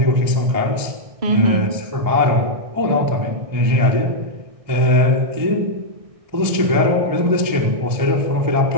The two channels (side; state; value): left; late; 1.6 ms